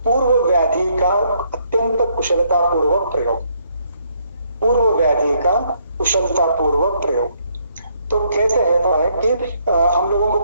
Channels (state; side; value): inverted; both; correlation -0.70